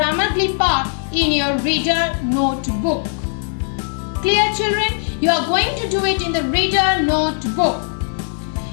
Glee part in your reader notebook. Clear, children? You are going to do it in the reader notebook.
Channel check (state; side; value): silent; right; digital silence